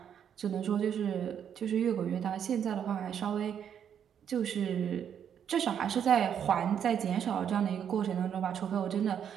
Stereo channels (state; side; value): quieter; left; 8.6 dB